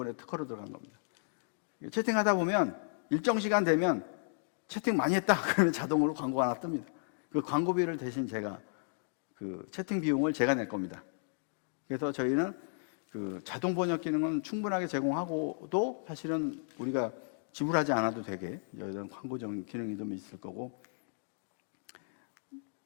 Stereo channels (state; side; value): silent; right; digital silence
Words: 특허로 들어간 겁니다. 채팅하다 보면 일정 시간 되면 채팅 많이 했다 그러면 자동으로 광고 하나 뜹니다. 그 광고비를 대신 제가 그 채팅 비용을 제가 낼 겁니다. 그래서 저희는 그 자동 번역 기능은 충분하게 제공하고도 사실은 우리가 지불하지 않아도 되게 이런 광고적인 기능이 좀 있을 거고,